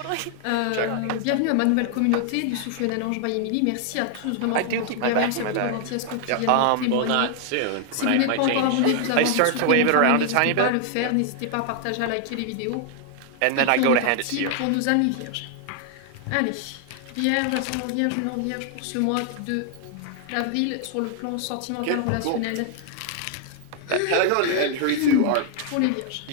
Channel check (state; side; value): different; both; correlation 0.00